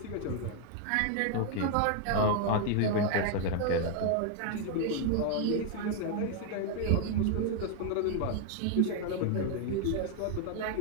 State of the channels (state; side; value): different; both; correlation 0.00